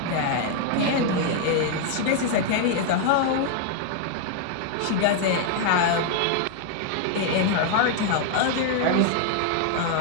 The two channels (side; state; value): both; different; correlation 0.00